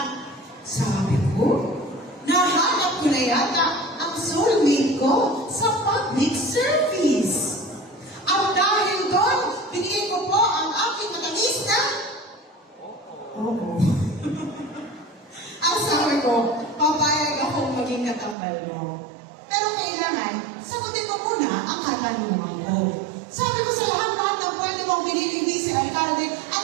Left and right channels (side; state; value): left; drops out; at 18.4 s